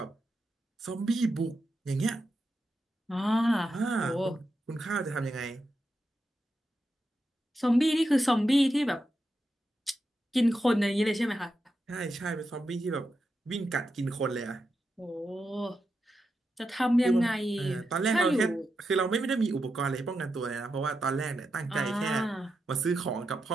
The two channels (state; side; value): normal; both; correlation 0.87